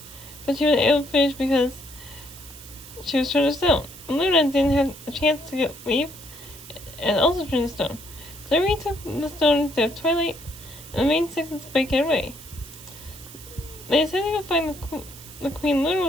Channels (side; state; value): right; noise; hiss, 17 dB below the sound